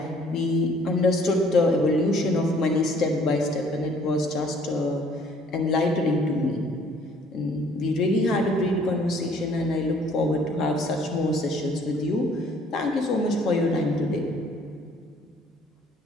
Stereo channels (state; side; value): normal; both; correlation 0.59